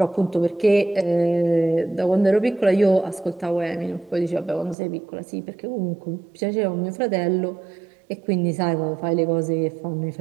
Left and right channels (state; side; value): drops out; left; at 4.8 s